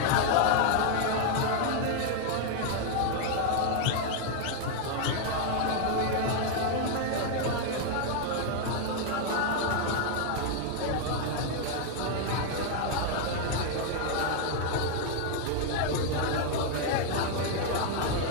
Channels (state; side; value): different; both; correlation 0.00